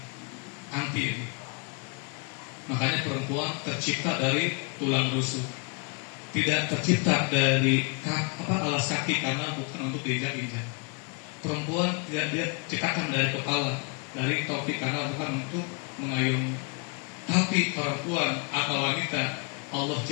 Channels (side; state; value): right; quieter; 34.6 dB